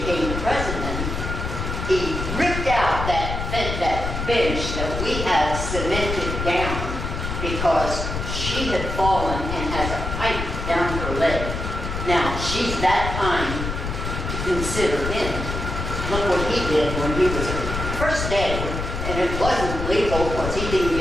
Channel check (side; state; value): left; noise; rumble, 4 dB below the sound